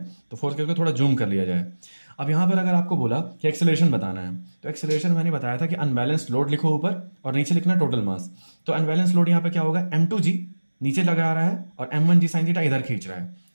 तो फोर्थ केस को थोड़ा जूम कर लिया जाए। अब यहाँ पर अगर आपको बोला कि एक्सेलरेशन बताना है, तो एक्सेलरेशन मैंने बताया था कि अनबैलेंस्ड लोड लिखो ऊपर और नीचे लिखना टोटल मास। तो अनबैलेंस लोड यहाँ पे क्या होगा, m2g नीचे लगा रहा है और m1g साइन थीटा इधर खींच रहा है।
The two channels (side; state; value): both; inverted; correlation -1.00